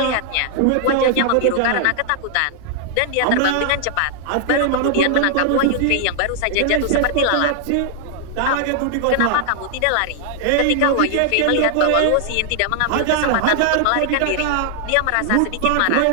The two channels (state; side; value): different; both; correlation 0.00